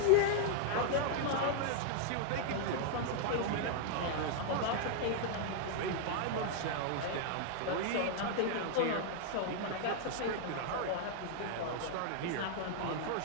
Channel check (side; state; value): both; different; correlation -0.01